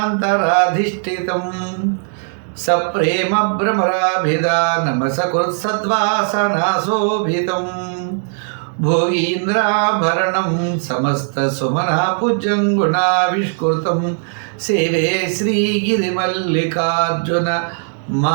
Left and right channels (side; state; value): left; silent; 62 dB below the other